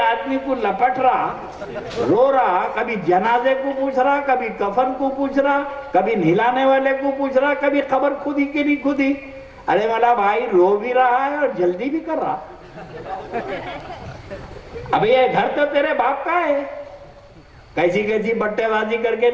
को लपट रहा, रो रहा, कभी जनाजे को पूछ रहा, कभी कफन को पूछ रहा, कभी नहलाने वाले को पूछ रहा, कभी खबर खुदी कि नहीं खुदी। अरे मला भाई रो भी रहा है और जल्दी भी कर रहा। अब ये घर तो तेरे बाप का है, कैसी कैसी बट्टेबाजी करके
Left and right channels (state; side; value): identical; both; correlation 1.00